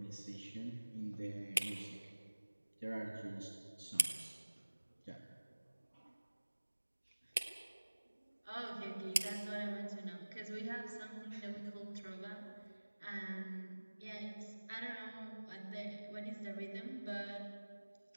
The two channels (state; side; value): inverted; both; correlation -1.00